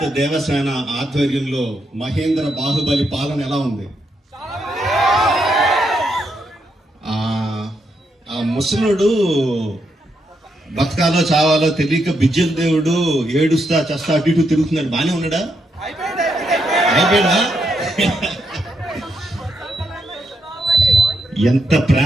దేవసేన ఆధ్వర్యంలో మహేంద్ర బాహుబలి పాలన ఎలా ఉంది? ఆ ముసలుడు బతకాలో చావాలో తెలియక బిజ్జల దేవుడు ఏడుస్తా చస్తా అటు ఇటు తిరుగుతున్నాడు. బానే ఉన్నాడా? అయిపోయాడా? ఎంత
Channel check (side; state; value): both; normal; correlation 0.80